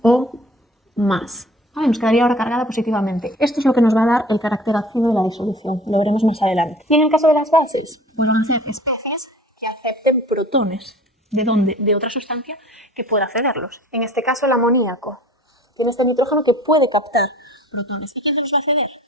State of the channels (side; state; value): both; normal; correlation 0.47